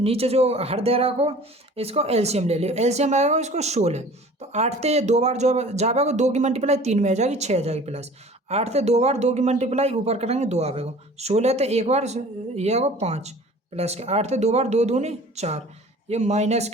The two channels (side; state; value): both; normal; correlation 0.45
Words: जो हर दे रहा को इसको एलसीएम ले लियो, एलसीएम आएगा इसको 16, तो 8 से 2 बार जो जाएगा 2 की मल्टीप्लाई 3 में आ जाएगी 6 आ जाएगी, प्लस 8 से 2 बार 2 की मल्टीप्लाई ऊपर करेंगे 2 आएगा, 16 तो एक बार ये आएगा 5, प्लस के 8 से 2 बार 2 दूनी 4, ये माइनस